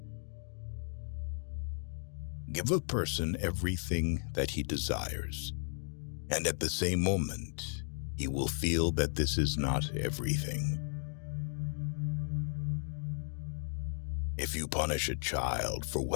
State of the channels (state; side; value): silent; right; 54 dB below the other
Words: Give a person everything that he desires, and at the same moment, he will feel that this is not everything. If you punish a child for